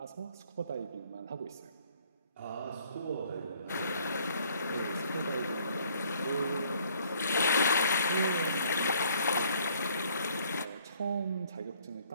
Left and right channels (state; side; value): inverted; both; correlation -0.61